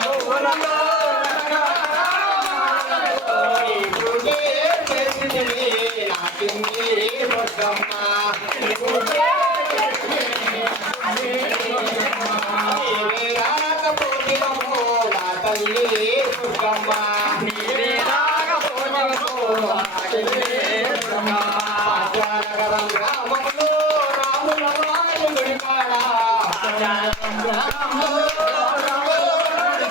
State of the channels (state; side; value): normal; both; correlation 0.37